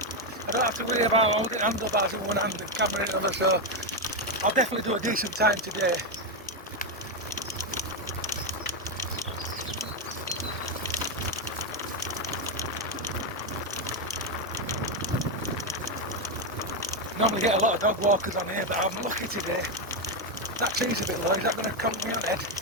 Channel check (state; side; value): normal; both; correlation 0.06